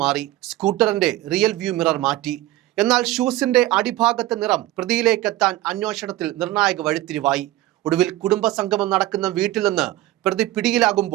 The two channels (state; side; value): quieter; left; 16.2 dB